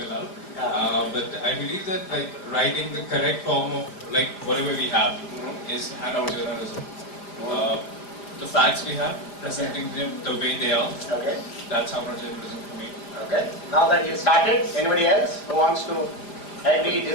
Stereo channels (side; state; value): right; late; 5.0 ms